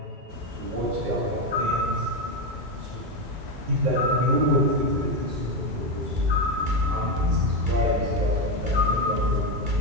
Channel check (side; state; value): left; late; 2.3 ms